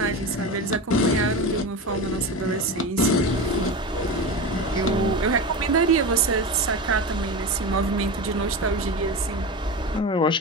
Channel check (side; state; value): both; normal; correlation 0.24